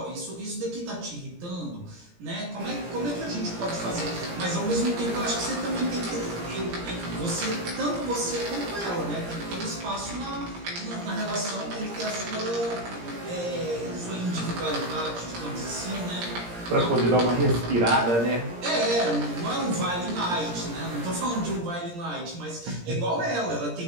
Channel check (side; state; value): left; late; 17 ms